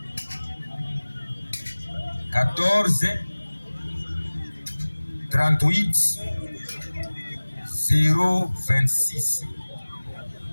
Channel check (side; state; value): both; inverted; correlation -1.00